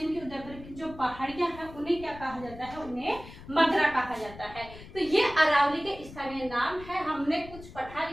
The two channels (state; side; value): noise; left; rumble, 16 dB below the sound